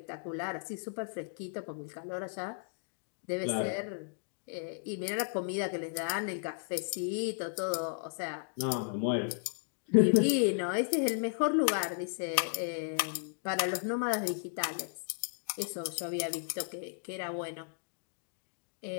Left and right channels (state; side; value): silent; right; digital silence